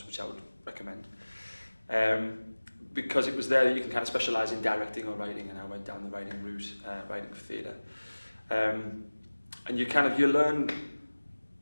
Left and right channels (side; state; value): both; inverted; correlation -1.00